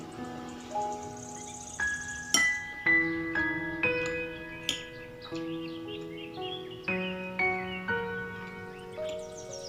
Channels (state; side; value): identical; both; correlation 1.00